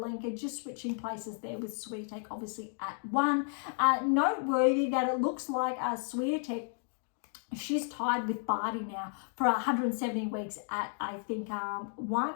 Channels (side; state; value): right; silent; 56 dB below the other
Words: just switching places there with Swiatek obviously at 1. Noteworthy that it looks like Swiatek, she's tied with Barty now for 170 weeks at, I think,